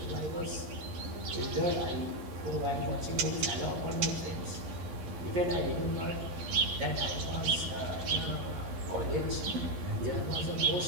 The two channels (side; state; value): left; late; 11 ms